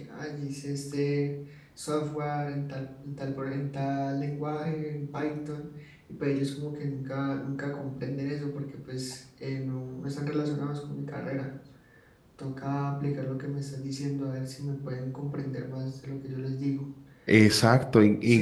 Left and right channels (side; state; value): both; identical; correlation 1.00